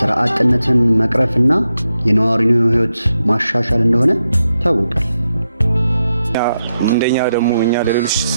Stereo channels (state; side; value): inverted; both; correlation -0.86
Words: አጥነትን መቅረፍና የነዋሪውን ህይወት ማሻሻል እንደሆነ ታውቋል። እንደኛ ደግሞ እኛ ለሌሎች